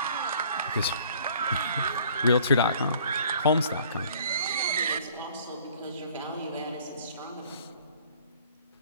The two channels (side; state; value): both; inverted; correlation -0.54